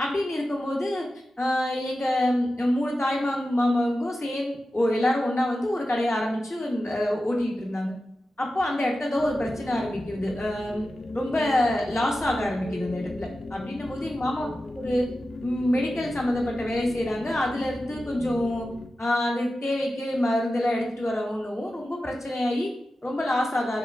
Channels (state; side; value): normal; both; correlation 0.93